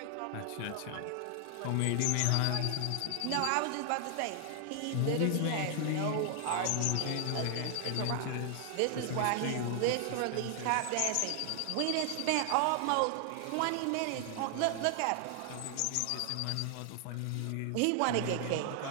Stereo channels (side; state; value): both; different; correlation 0.00